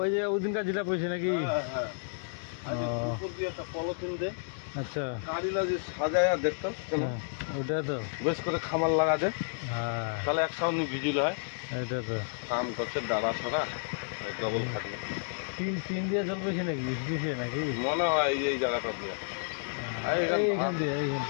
যে ওদিনকার যেটা পড়ছে নাকি? আচ্ছা সাজায় দেখতো ওটা তো বেশ করে খামার লাগা দে, হ্যাঁ তাহলে একসাথে ভিজিল হয়। এটা তো কাম করছে দাঁড়া ছড়া ডবল থাকলে টিন দিয়ে জল পড়ছে নাকি? দিছে নাকি মনে হয় এই জায়গাটা দিয়ে, এইখান দিয়ে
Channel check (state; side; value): silent; right; digital silence